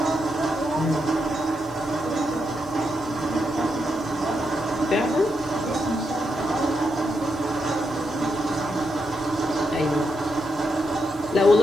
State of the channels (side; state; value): right; noise; hiss, 25 dB below the sound